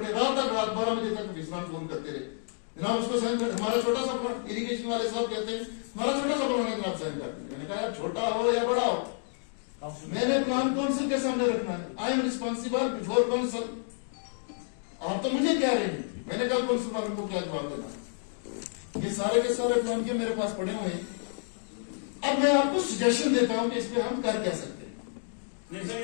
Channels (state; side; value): silent; right; digital silence